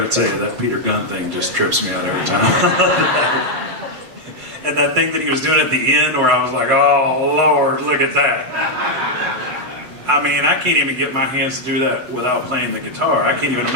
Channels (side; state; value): left; late; 7.9 ms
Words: tell you, that Peter Gunn thing just trips me out every time. And that thing that he was doing at the end where I was like, oh Lord, look at that. I mean, I can't even get my hands to do that without playing the guitar. I can't even